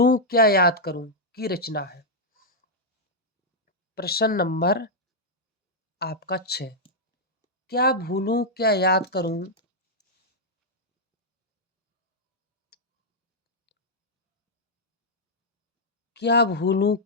क्या याद करूं की रचना है। प्रश्न नंबर आपका 6, क्या भूलूं क्या याद करूं क्या भूलूं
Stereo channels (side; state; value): both; normal; correlation -0.05